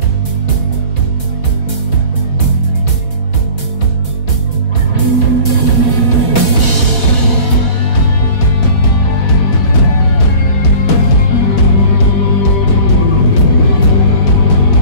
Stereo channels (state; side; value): late; right; 4.2 ms